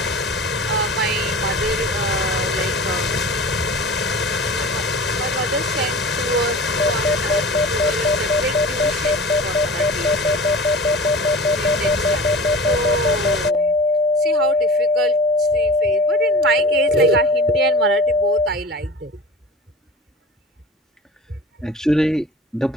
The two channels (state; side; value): normal; both; correlation 0.38